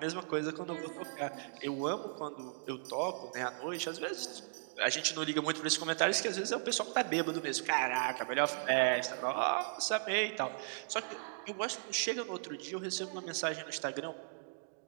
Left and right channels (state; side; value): silent; left; digital silence